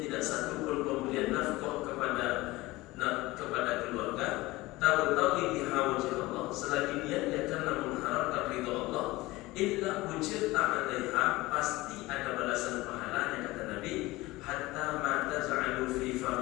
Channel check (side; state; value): right; quieter; 19.8 dB